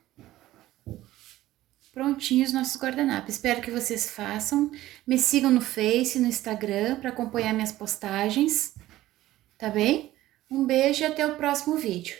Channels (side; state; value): left; quieter; 15.4 dB